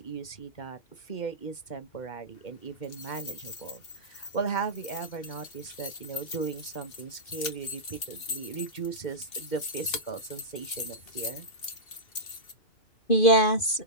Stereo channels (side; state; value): right; late; 2.7 ms